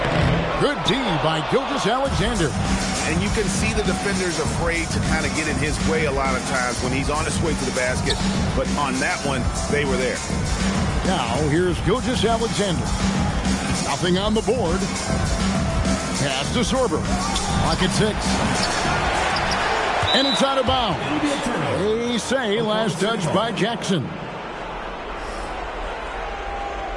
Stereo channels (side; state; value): both; identical; correlation 1.00